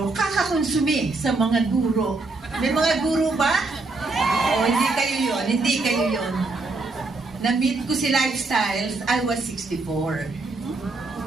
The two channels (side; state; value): left; quieter; 3.5 dB